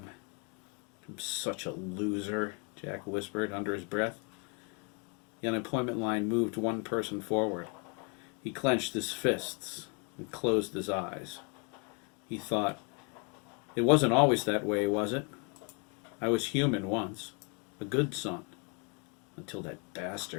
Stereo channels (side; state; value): right; quieter; 35.1 dB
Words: I'm such a loser, Jack whispered under his breath. The unemployment line moved one person forward. He clenched his fists and closed his eyes. He thought, it wasn't always that way, was it? I was human once, a good son, until that